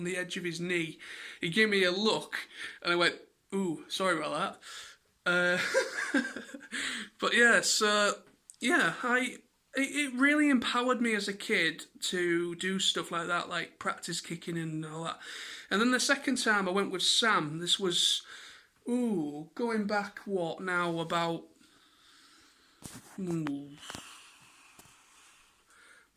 edge of his knee. He gave me a look, and I went, "Ooh, sorry about that." But yeah, so yeah, it really empowered me as a kid to do stuff like that, like practice kicking and all that. And then the second time I went with Sam. This was going back about maybe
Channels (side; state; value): both; identical; correlation 1.00